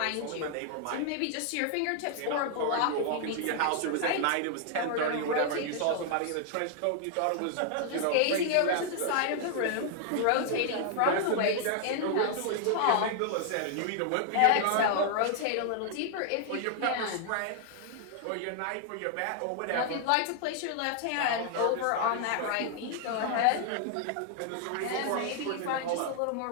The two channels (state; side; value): different; both; correlation 0.00